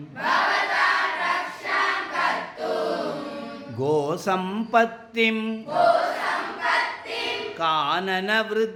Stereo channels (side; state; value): both; identical; correlation 1.00